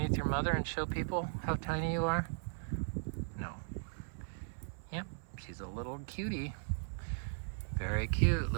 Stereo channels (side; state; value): left; silent; 53 dB below the other